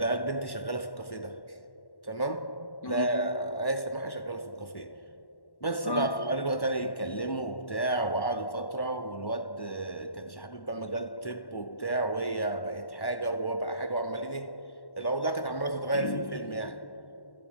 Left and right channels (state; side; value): late; right; 1.1 ms